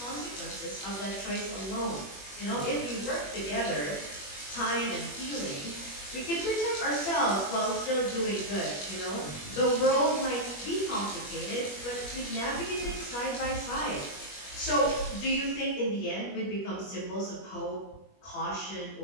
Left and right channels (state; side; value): late; right; 21 ms